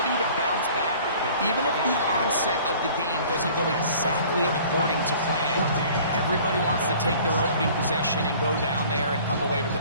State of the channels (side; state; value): both; inverted; correlation -0.50